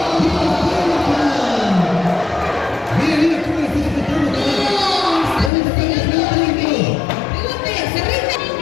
Mira, mira cómo le está apretando. ¿Dónde está el Ricky? Pregunte, se rinde.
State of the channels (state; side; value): drops out; right; at 5.5 s